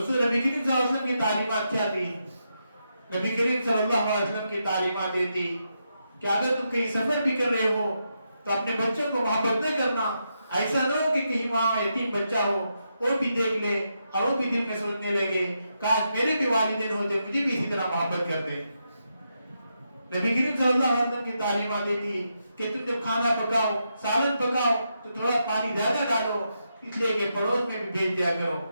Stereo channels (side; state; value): both; inverted; correlation -0.83